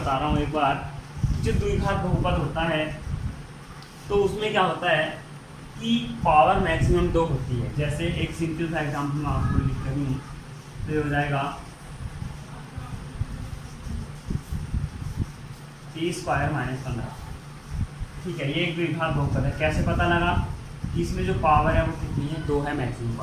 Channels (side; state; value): both; identical; correlation 1.00